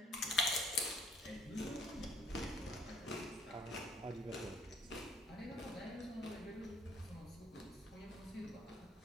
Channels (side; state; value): both; normal; correlation 0.59